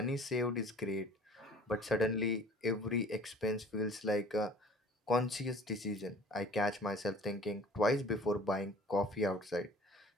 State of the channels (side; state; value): both; normal; correlation 0.49